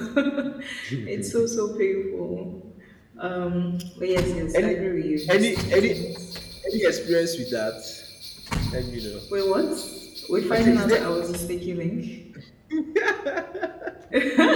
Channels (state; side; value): identical; both; correlation 1.00